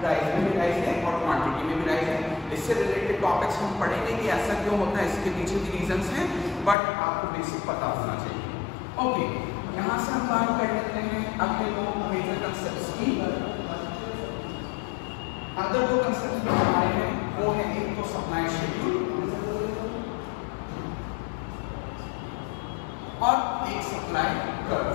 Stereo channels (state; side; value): drops out; right; at 6.8 s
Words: प्राइस में भी राइज है और क्वांटिटी में भी राइज है. इससे रिलेटेड टॉपिक्स हम पढ़ेंगे कि ऐसा क्यों होता है, इसके पीछे भी रीजंस हैं, बट आपको बेसिक पता होना चाहिए. ओके, यहाँ से हम बात कर लेते हैं अगले दो मेजर कंसेप्ट्स की. अदर दो कंसेप्ट जो हमारे हैं वो है एक तो सप्लाई शेड्यूल और एक सप्लाई कर्व.